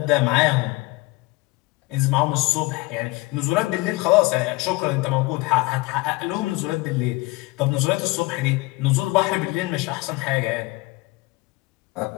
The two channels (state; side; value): quieter; right; 22.3 dB